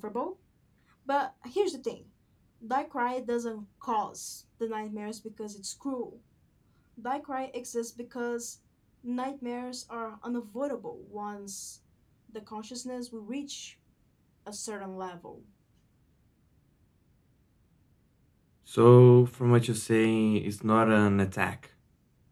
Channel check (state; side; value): identical; both; correlation 1.00